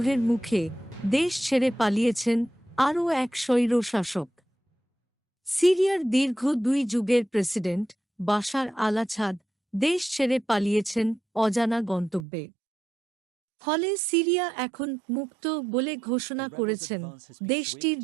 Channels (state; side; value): drops out; left; at 12.2 s